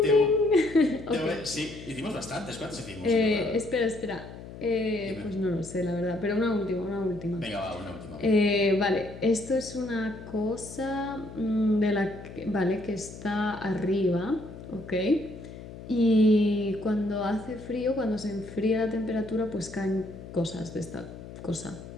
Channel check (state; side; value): noise; left; hum, 14 dB below the sound